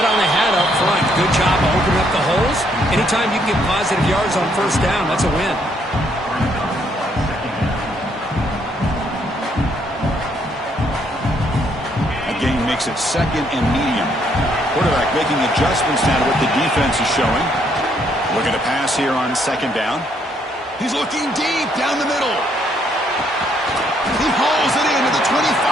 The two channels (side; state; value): both; normal; correlation 0.70